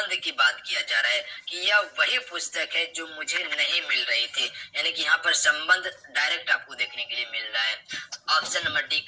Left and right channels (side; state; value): both; identical; correlation 1.00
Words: की बात किया जा रहा है कि यह वही पुस्तक है जो मुझे नहीं मिल रही थी, यानी कि यहाँ पर संबंध डायरेक्ट आपको देखने के लिए मिल रहा है। Option number D